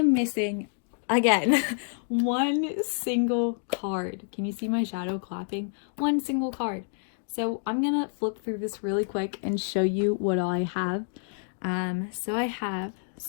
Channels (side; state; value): right; silent; digital silence